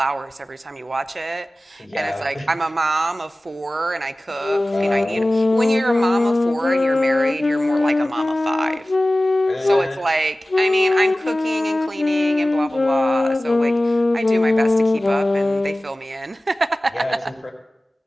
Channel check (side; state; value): both; normal; correlation 0.97